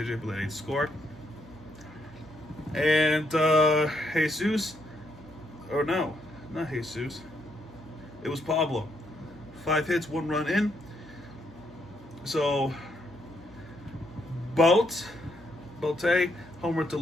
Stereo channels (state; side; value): normal; both; correlation 0.75